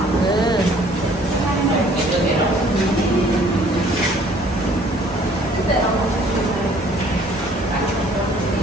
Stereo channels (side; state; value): both; normal; correlation 0.57